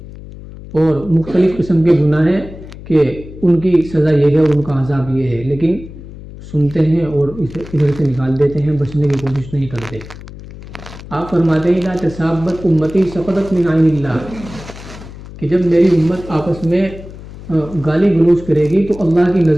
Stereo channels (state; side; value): noise; left; hum, 15 dB below the sound